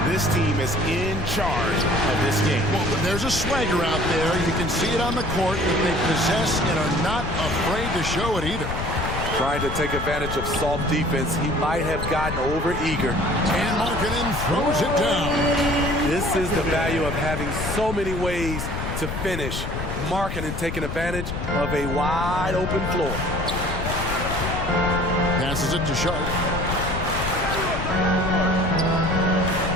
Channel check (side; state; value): left; noise; rumble, 5 dB below the sound